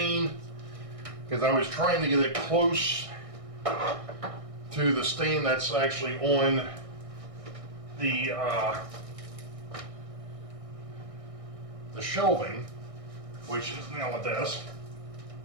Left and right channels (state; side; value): late; left; 1.6 ms